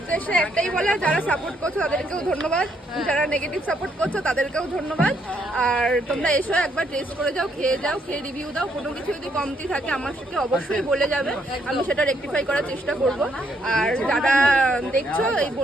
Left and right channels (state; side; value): normal; both; correlation 0.72